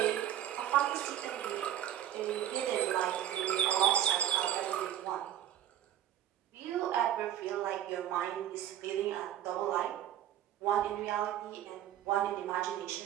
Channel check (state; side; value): quieter; left; 11.3 dB